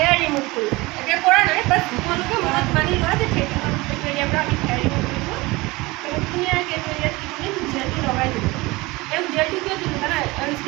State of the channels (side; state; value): left; quieter; 22.2 dB